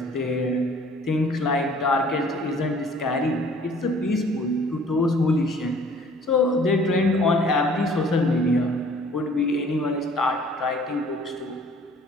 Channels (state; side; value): normal; both; correlation 0.54